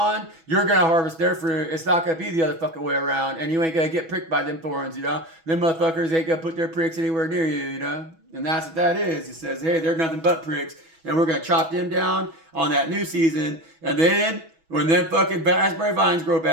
you're going to harvest their fruit. It's not going to be the other fucking way around. And you ain't going to get pricked by them thorns, you know. Them motherfuckers ain't going to put their pricks anywhere near you, you know. And that's what that is. It says, hey, they're nothing but pricks. And we're going to chop them down on that new season. And then when them fucking raspberry vines grow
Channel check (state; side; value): late; left; 6.1 ms